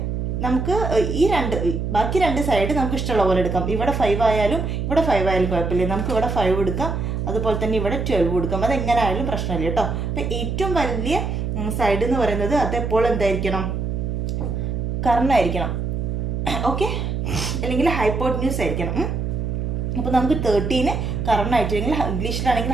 നമുക്ക് ബാക്കി 2 സൈഡ് നമുക്ക് ഇഷ്ടമുള്ള പോലെ എടുക്കാം. ഇവിടെ 5 ആയാലും ഇവിടെ 5 ആയാലും കുഴപ്പമില്ല. നമുക്ക് ഇവിടെ 5 എടുക്കാം, അതുപോലെ തന്നെ ഇവിടെ 12 എടുക്കാം. അത് എങ്ങനെ ആയാലും പ്രശ്നമില്ല കേട്ടോ. അപ്പം ഏറ്റവും വലിയ സൈഡ് എന്ന് പറയുന്നത് അത് എപ്പോൾ എന്തായിരിക്കണം? കർണായിരിക്കണം. ഓക്കെ, അല്ലെങ്കിൽ ഹൈപ്പോട്ന്യൂസ് ആയിരിക്കണം. അപ്പോൾ നമുക്ക് 13 കർണായിട്ട്, അല്ലെങ്കിൽ ഇംഗ്ലീഷിലാണെങ്കിൽ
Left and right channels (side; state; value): right; noise; hum, 2 dB below the sound